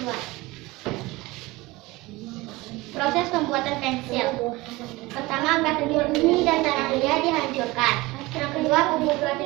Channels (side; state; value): left; quieter; 21.1 dB